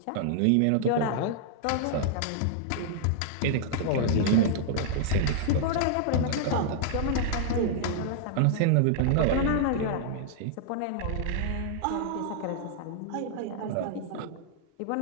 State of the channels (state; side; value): different; both; correlation -0.01